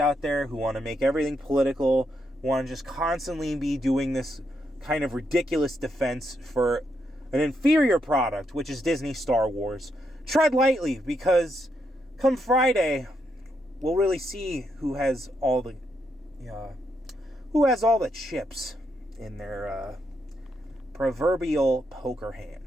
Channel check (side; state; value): both; normal; correlation 0.80